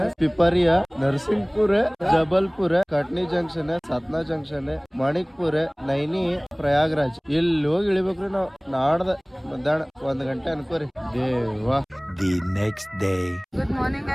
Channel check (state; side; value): identical; both; correlation 1.00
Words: Pipariya, Narsinghpur, Jabalpur, Katni junction, Satna junction, Manikpur, Naini, Prayagraj. ಇಲ್ಲಿ ಹೋಗಿ ಇಳಿಬೇಕ್ರಿ ನಾವು. ನಾಡ್ದ ಮಧ್ಯಾಹ್ನ 1 ಗಂಟೆ ಅನ್ಕೋರಿ. ದೇವಾ. The next day. Good morning